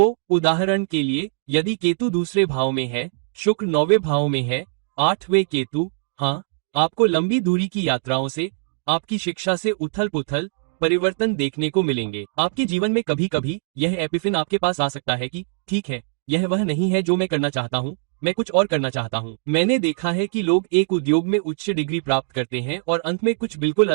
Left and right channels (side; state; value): left; silent; digital silence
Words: उदाहरण के लिए, यदि केतु दूसरे भाव में है, शुक्र 9वें भाव में है, 8वें केतु, हाँ, आपको लंबी दूरी की यात्राओं से, आपकी शिक्षा से उथल पुथल, परिवर्तन देखने को मिलेंगे। आपके जीवन में कभी कभी यह एपिफिन आपके पास आ सकता है कि ठीक है, यह वह नहीं है जो मैं करना चाहता हूँ, मैं कुछ और करना चाहता हूँ। मैंने देखा है कि लोग एक उद्योग में उच्च डिग्री प्राप्त करते हैं और अंत में कुछ बिल्कुल